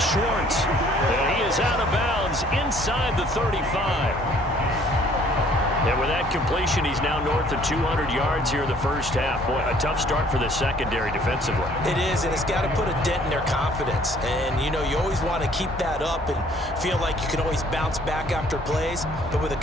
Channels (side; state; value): both; normal; correlation 0.59